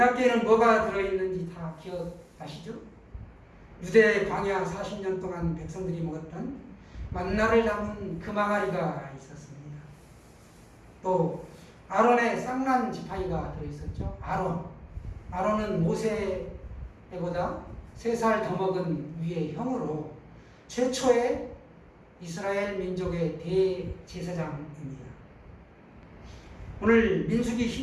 뭐가 들어있는지 다 기억하시죠? 유대 광야 40년 동안 백성들이 먹었던 만나를 담은 금항아리가 있었습니다. 또 아론의 쌍난 지팡이가 들어있었죠. 아론은 모세보다 3살 더 먹은 위의 형으로 최초의 이스라엘 민족의 대제사장입니다. 오늘 민수기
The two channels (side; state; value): both; identical; correlation 1.00